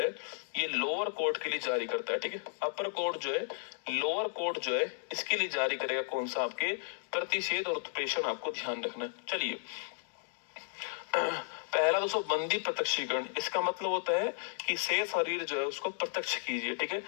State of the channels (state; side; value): silent; right; digital silence